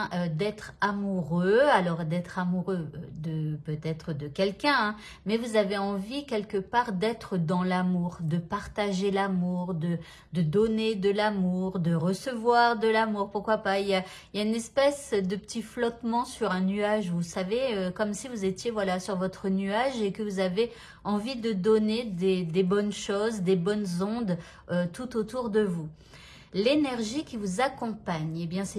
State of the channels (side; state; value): both; identical; correlation 1.00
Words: amoureux. Alors, d'être amoureux de peut-être de quelqu'un, hein, mais vous avez envie quelque part d'être dans l'amour, de partager l'amour, de donner de l'amour, de recevoir de l'amour. Pourquoi pas, il y a une espèce de petit flottement sur un nuage, vous savez, comme si vous étiez voilà sur votre nuage et que vous avez envie de donner des bonnes choses, des bonnes ondes tout autour de vous. L'énergie qui vous accompagne, eh bien,